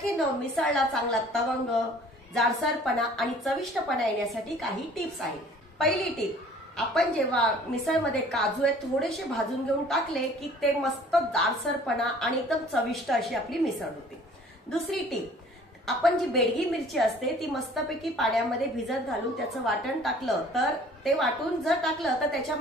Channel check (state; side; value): normal; both; correlation 0.52